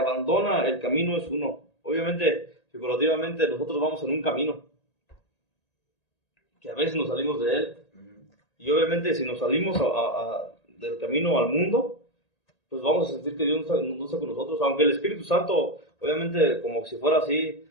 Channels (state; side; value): late; right; 1.8 ms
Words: el camino es uno. Obviamente, figurativamente, nosotros vamos en un camino, que a veces nos salimos de Él. Y obviamente, si nos salimos del camino al mundo, pues vamos a sentir que Dios no está con nosotros. Aunque el Espíritu Santo, obviamente, como si fuera así,